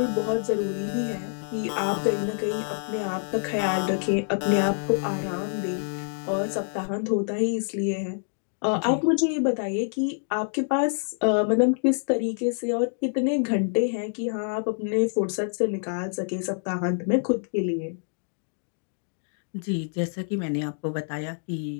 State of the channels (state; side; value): silent; right; digital silence